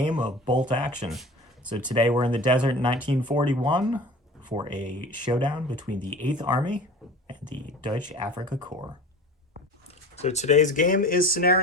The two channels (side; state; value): both; normal; correlation 0.38